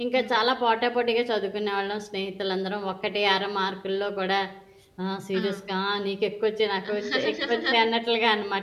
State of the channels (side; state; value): both; identical; correlation 1.00